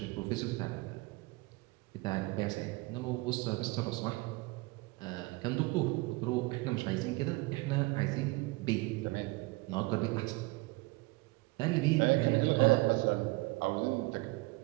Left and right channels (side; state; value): left; quieter; 23.4 dB